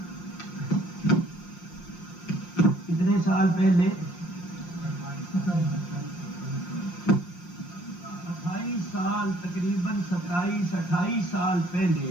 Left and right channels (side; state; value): right; late; 5.7 ms